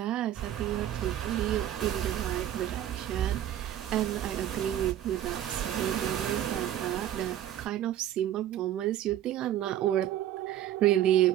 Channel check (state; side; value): quieter; left; 11.8 dB